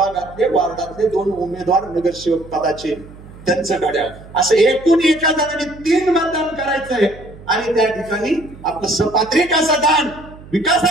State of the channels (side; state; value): right; noise; hum, 19 dB below the sound